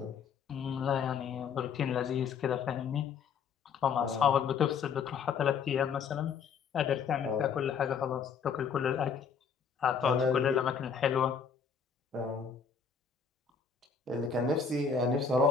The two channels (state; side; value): quieter; right; 6.3 dB